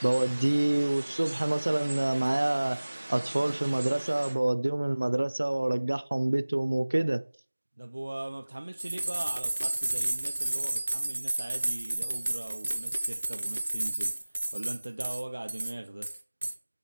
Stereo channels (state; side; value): inverted; both; correlation -1.00